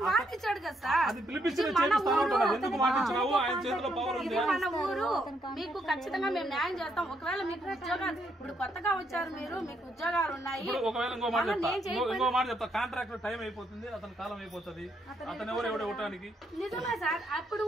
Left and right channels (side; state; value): both; normal; correlation 0.75